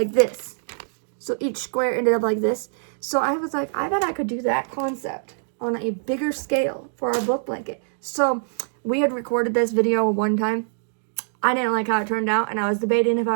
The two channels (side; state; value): left; silent; digital silence